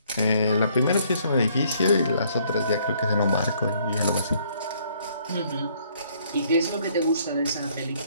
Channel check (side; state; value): both; inverted; correlation -0.65